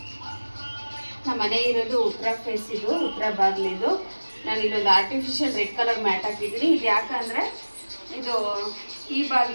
ನಮ್ಮ ಮನೆ ಇರೋದು ಉತ್ತರ ಫೇಸ್, ಇದು ಉತ್ತರ ಬಾಗಿಲಿದು. ನಾನು ಇಲ್ಲೊಂದು ಆರ್ಟಿಫಿಷಿಯಲ್ ರೆಡ್ ಕಲರ್ ಮ್ಯಾಟ್ ಹಾಕಿದ್ದೀನಿ. ಇದು ಯಾಕಂದರೆ ಇದು ಈ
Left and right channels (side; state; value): both; inverted; correlation -1.00